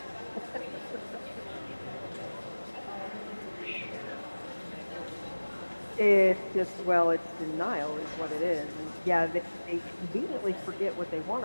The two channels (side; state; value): both; inverted; correlation -1.00